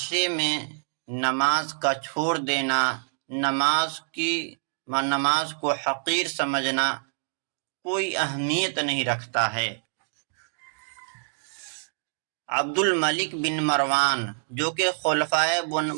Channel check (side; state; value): left; silent; digital silence